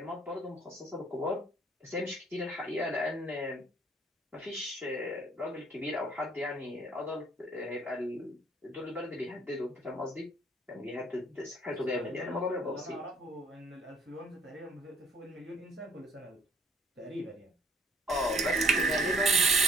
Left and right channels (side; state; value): both; normal; correlation 0.60